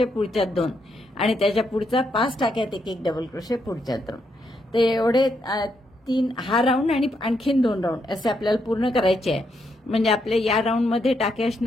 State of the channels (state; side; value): normal; both; correlation 0.78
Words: पुढच्यात 2, आणि त्याच्या पुढचा 5 टाक्यात 1 डबल क्रोशे, पुढच्यात 2. तर एवढे 3 हा राऊंड आणि आणखीन 2 राऊंड असे आपल्याला पूर्ण करायचे आहे. म्हणजे आपल्या या राऊंडमध्ये टाके